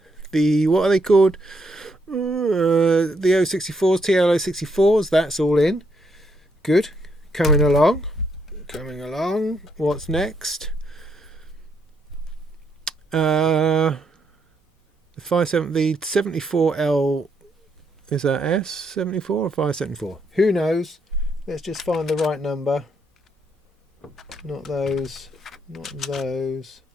The what are they called? The 064s, TL064s. That's all in. Good. Coming along. What's next? The 74L. Is that S74 or 574? Who knows? Let's just find the right number. Not those. Not those.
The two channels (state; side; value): normal; both; correlation 0.75